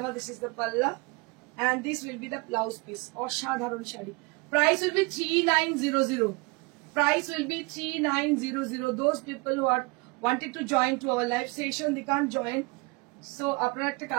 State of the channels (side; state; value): left; quieter; 27.4 dB